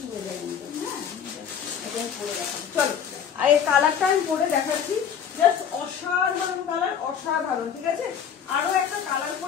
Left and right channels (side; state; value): right; quieter; 8.0 dB